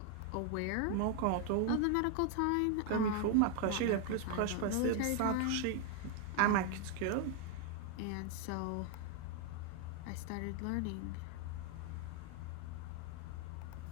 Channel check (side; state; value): both; different; correlation 0.00